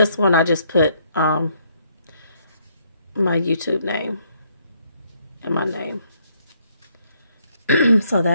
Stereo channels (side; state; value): both; inverted; correlation -0.70